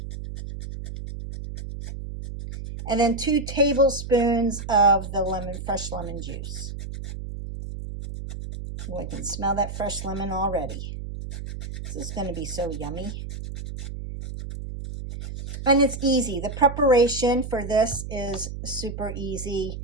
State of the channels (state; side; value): noise; right; hum, 8 dB below the sound